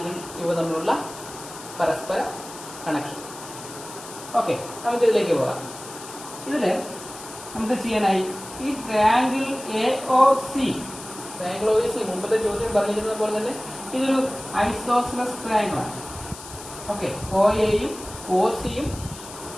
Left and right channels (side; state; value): left; noise; hiss, 15 dB below the sound